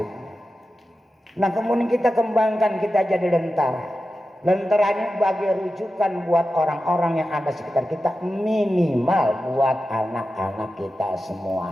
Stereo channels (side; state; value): both; normal; correlation 0.92